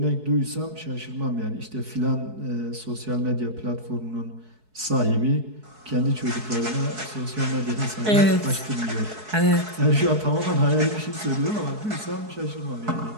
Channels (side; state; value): left; late; 4.7 ms